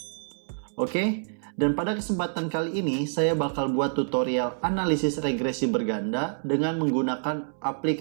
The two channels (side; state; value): left; silent; 60 dB below the other